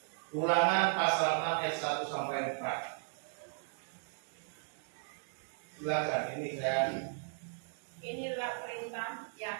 Ulangan pasal 6 ayat 1 sampai 4. Silakan, ini saya. Inilah perintah,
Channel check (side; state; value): left; silent; digital silence